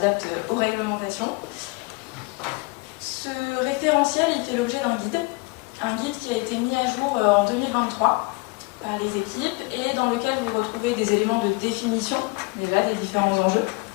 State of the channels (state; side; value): quieter; right; 27.7 dB